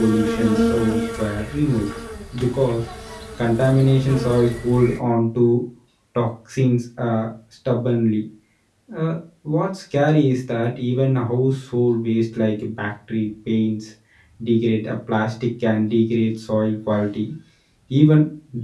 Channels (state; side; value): identical; both; correlation 1.00